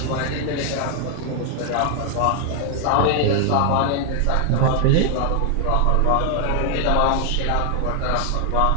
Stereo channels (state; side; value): different; both; correlation 0.00